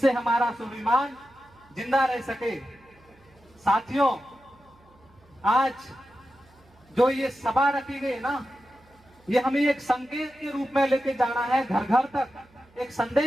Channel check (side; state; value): right; noise; hum, 30 dB below the sound